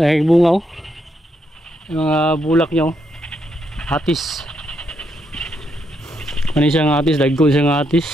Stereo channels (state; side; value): normal; both; correlation 0.78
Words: bunga oh. Yung mga bulak niya oh. Atis. Ano siyang atis, dagko siyang